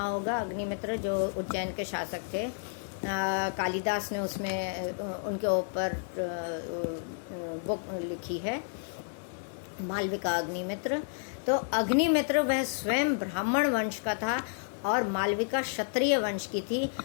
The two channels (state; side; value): silent; right; 57 dB below the other